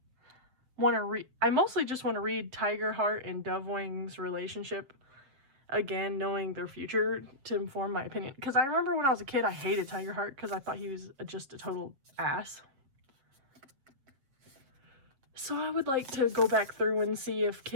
want to read. I mostly just want to read Tigerheart and Dovewing's relationship again, knowing their future to inform my opinion. Because I remember when I was a kid, I hated Tigerheart because I thought he was just a total ass. So I would like to go back through and see if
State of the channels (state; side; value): late; left; 7.4 ms